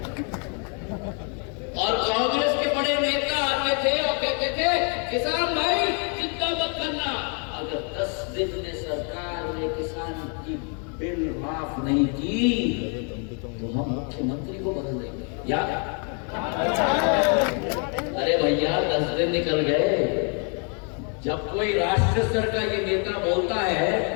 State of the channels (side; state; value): right; quieter; 39.9 dB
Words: और कांग्रेस के बड़े नेता आते थे और कहते थे, किसान भाई चिंता मत करना, अगर 10 दिन में सरकार ने किसान की बिल माफ नहीं की तो हम मुख्यमंत्री को बदल देंगे। याद? अरे भैया 10 दिन निकल गए। जब कोई राष्ट्र स्तर का ये नेता बोलता है